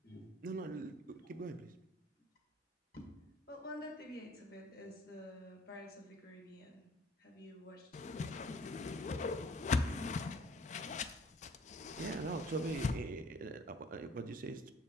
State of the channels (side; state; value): both; normal; correlation 0.56